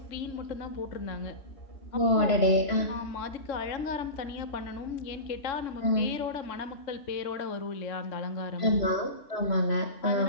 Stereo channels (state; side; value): late; right; 3.0 ms